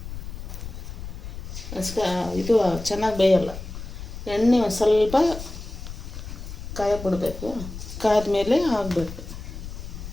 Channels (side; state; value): left; noise; rumble, 10 dB below the sound